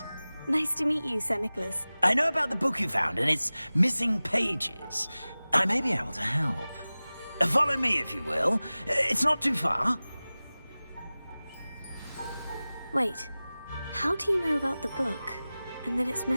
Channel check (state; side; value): inverted; both; correlation -0.98